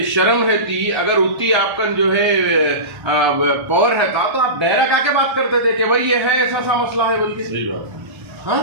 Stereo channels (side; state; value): left; late; 1.3 ms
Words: शर्म रहती, अगर उतनी आपका जो है पावर रहता तो आप डायरेक्ट आके बात करते थे कि भाई ये है ऐसा मसला है, बल्कि सही बात। हाँ,